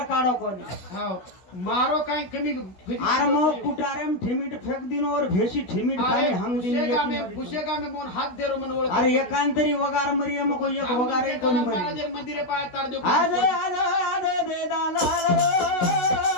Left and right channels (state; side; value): late; right; 16 ms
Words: काढो कोणी मारो काही कमी आर मग कुटारेम ठिमीट फेक दिन और भेशी ठिमीट खाली हम दिन पुशेगा में मोन हात देरो मन ओळख अरे एकांतरी वगार मरिया मग एक वगार कोणी मरी मंदिरे पाय तार देऊ आज दे दालाल